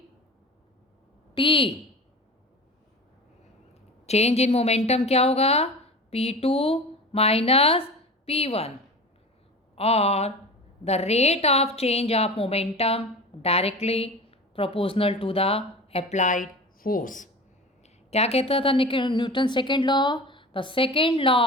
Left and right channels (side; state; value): both; normal; correlation 0.33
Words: t. Change in momentum क्या होगा? P2 minus P1 और the rate of change of momentum directly proportional to the applied force. क्या कहता था Newton second law? The second law